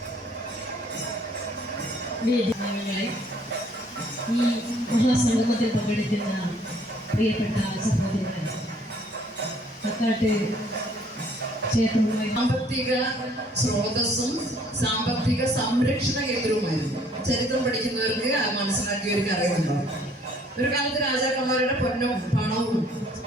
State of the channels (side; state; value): both; normal; correlation 0.60